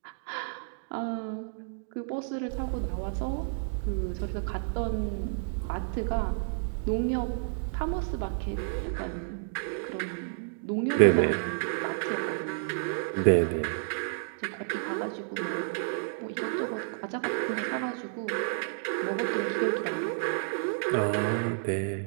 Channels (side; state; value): left; silent; digital silence